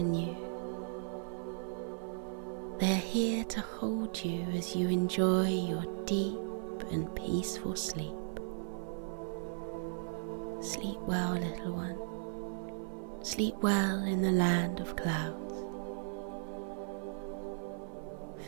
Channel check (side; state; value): left; silent; 53 dB below the other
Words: you. They are here to hold you as you enjoy your deep and peaceful sleep. Sleep well, little one. Sleep well in the land of clouds.